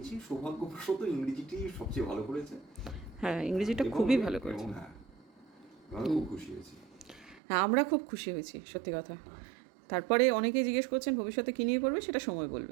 সৌভাগ্যবশত ইংরেজিটি সবচেয়ে ভালো করেছে। হ্যাঁ, ইংরেজিটা খুবই ভালো করেছে। হ্যাঁ, আমি খুব খুশি হয়েছি। হ্যাঁ, আমরা খুব খুশি হয়েছি, সত্যি কথা। হ্যাঁ। তারপরে অনেকেই জিজ্ঞেস করছেন ভবিষ্যতে কী নিয়ে পড়বে, সেটা সময়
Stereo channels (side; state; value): left; drops out; at 7.4 s